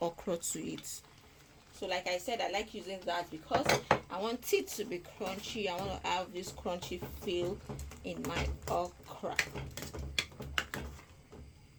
okra to it. So like I said, I like using that because I want it to be crunchy. I want to have this crunchy feel in my okra.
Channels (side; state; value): both; identical; correlation 1.00